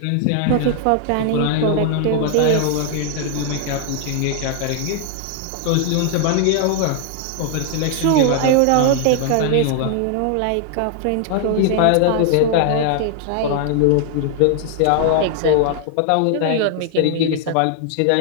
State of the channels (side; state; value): both; different; correlation 0.00